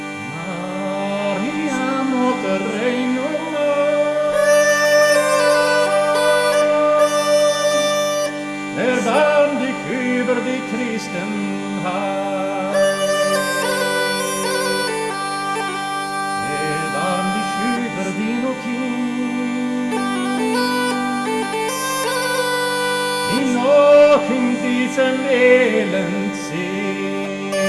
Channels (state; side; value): identical; both; correlation 1.00